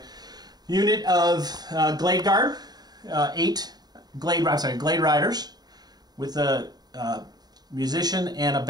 Unit of Glade Guard, 8 Glade Riders with a musician and a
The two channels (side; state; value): left; late; 0.20 ms